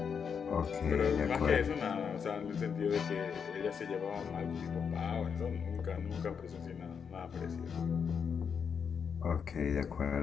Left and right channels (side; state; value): right; quieter; 6.7 dB